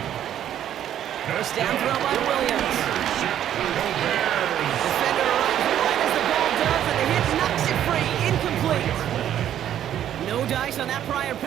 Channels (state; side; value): quieter; left; 10.8 dB